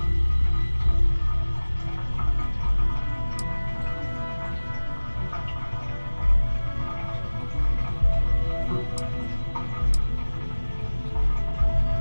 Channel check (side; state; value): both; inverted; correlation -1.00